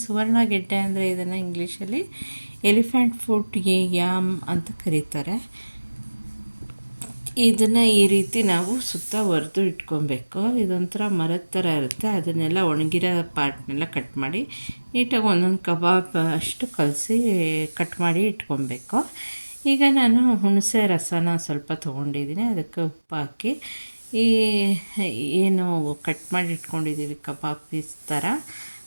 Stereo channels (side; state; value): both; inverted; correlation -1.00